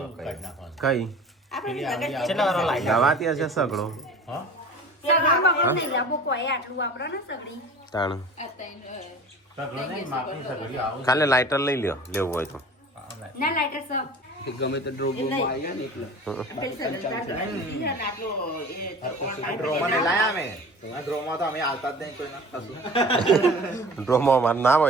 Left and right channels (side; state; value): both; normal; correlation 0.41